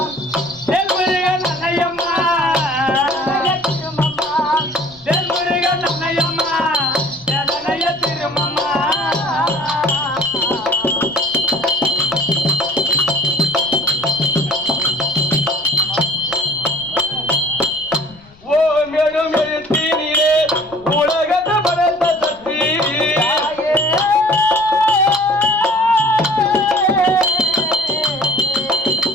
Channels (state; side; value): noise; left; rumble, 27 dB below the sound